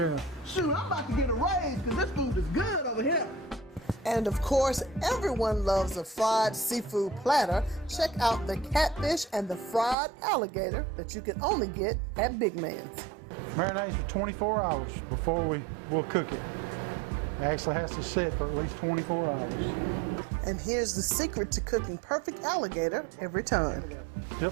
Shoot, I'm about to get a raise because this food is good over here. And of course, everyone loves a fried seafood platter. Check out the catfish and the fried alligator that you can only get at Big Man's. Marinates for 24 hours before we'll cook it. It actually has to sit for at least 24 hours. And here's the secret to cooking perfect alligator every time.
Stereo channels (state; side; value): drops out; left; at 10.0 s